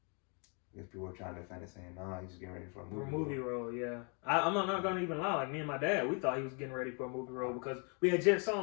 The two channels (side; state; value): right; quieter; 37.1 dB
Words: if people were trying to defend it, saying, "No, he's just getting ready for a movie role." Yeah. I'm not gonna even lie. Like me and my dad, we thought he was getting ready for a movie role because we had just saw